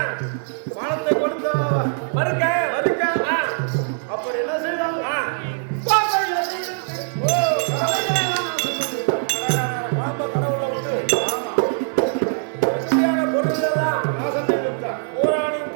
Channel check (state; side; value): silent; left; digital silence